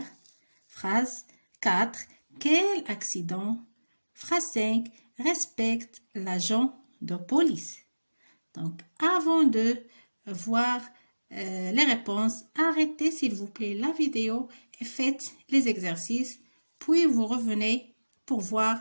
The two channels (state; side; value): inverted; both; correlation -1.00